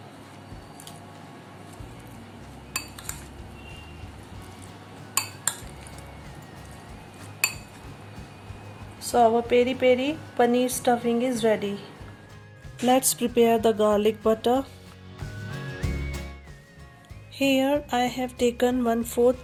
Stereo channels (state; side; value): identical; both; correlation 1.00